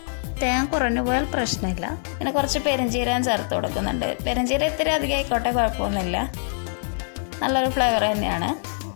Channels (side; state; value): right; silent; digital silence